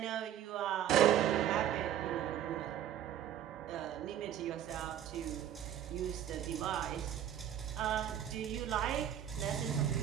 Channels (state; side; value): quieter; left; 10.6 dB